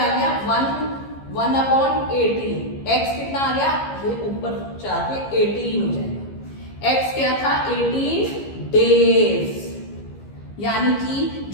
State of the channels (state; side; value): late; right; 15 ms